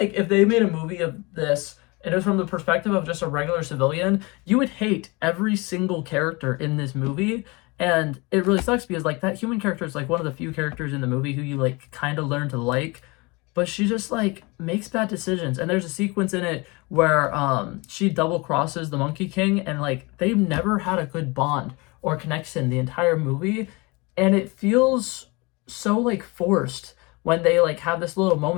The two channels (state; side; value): quieter; right; 26.2 dB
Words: if they made a movie of this and it was from the perspective of just a regular civilian, you would hate every single character in this movie. And it really sucks because like that human character is like one of the few characters in the movie who you like kind of learn to like, but she just like makes bad decisions. And there's a sequence in it where she double crosses the Monkey King, and like they've never had a good bond or connection the entire movie, and it feels so like forced when they like have this little